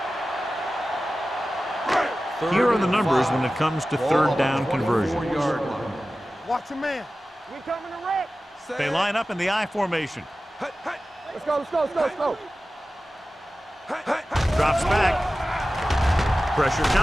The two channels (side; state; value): both; normal; correlation 0.95